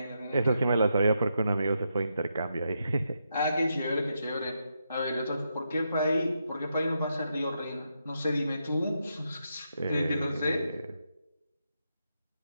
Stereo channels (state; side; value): inverted; both; correlation -0.83